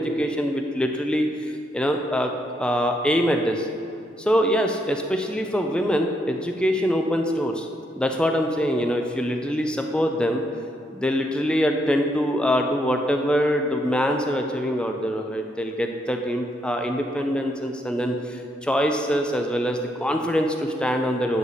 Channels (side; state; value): both; normal; correlation 0.76